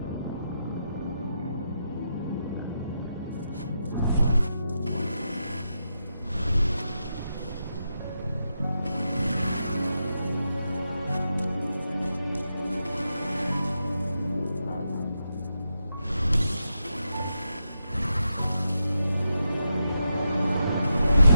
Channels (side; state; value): both; inverted; correlation -0.85